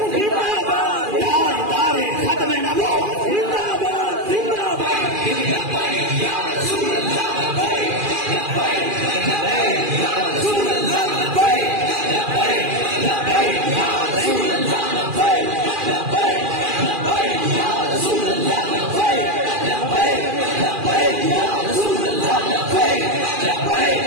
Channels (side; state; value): left; late; 2.4 ms